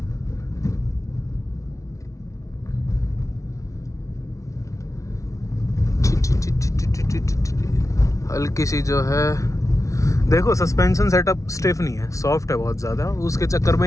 हल्की सी जो है, देखो सस्पेंशन सेटअप स्टिफ नहीं है, सॉफ्ट है बहुत ज़्यादा। उसके चक्कर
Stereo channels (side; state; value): right; late; 0.15 ms